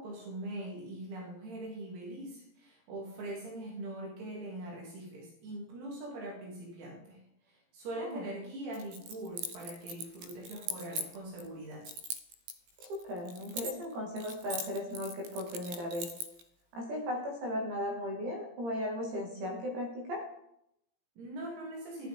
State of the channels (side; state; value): left; late; 17 ms